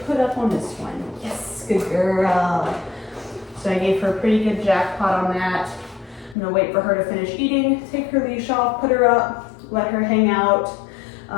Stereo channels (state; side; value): drops out; right; at 6.4 s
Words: up on this one. Yes, good girl. So I gave her a pretty good jackpot on that. I'm gonna wait for her to finish eating, take her leash off, put her up, let her hang out,